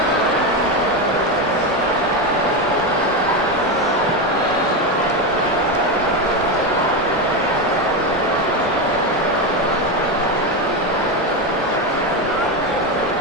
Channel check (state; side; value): normal; both; correlation 0.12